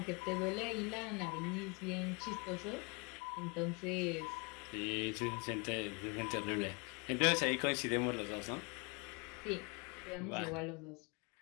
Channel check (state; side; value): quieter; right; 30.4 dB